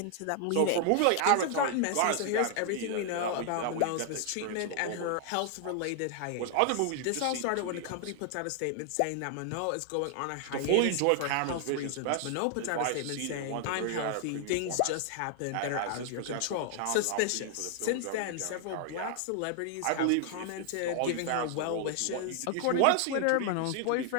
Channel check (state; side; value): different; both; correlation 0.00